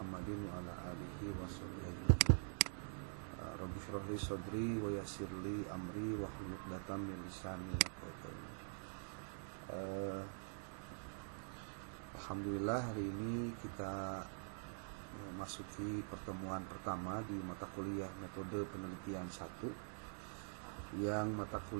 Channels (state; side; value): silent; left; digital silence